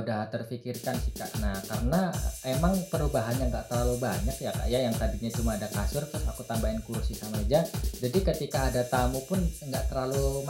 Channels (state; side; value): identical; both; correlation 1.00